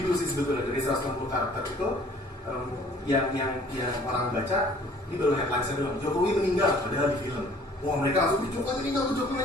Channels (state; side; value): normal; both; correlation 0.54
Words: dulu sih sebetulnya dari 160 karakter itu. Yang orang baca ini baru headline-nya doang. Jokowi meninggal padahal di film. Wah mereka langsung Jokowi